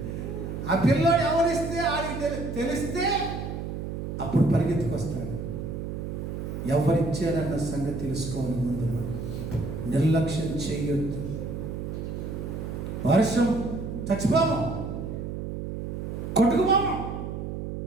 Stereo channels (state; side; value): noise; right; hum, 5 dB below the sound